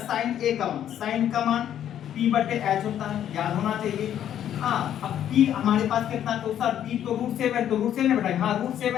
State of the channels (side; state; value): right; quieter; 10.4 dB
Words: a का मान, साइन का मान p बटे h होता है, याद होना चाहिए। हाँ, अब p हमारे पास कितना, तो सर p तो √7, तो √7 बैठाएंगे, हाँ